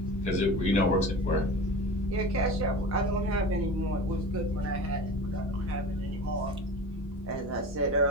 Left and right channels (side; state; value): both; normal; correlation 0.34